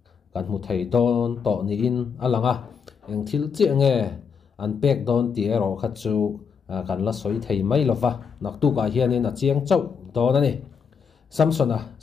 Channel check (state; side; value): quieter; right; 6.3 dB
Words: kan mu thei don to ni in alanga eng thil chi nge an pek don ti ero kha chu kan la soi thei mai lova nak tu ka hian in a chiang chau don ani Samson a